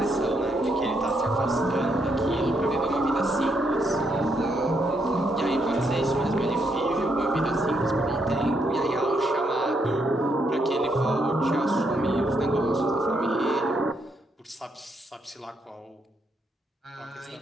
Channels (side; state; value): both; normal; correlation 0.76